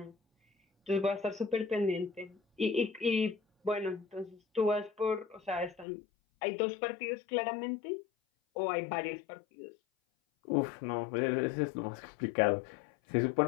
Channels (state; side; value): drops out; right; at 5.9 s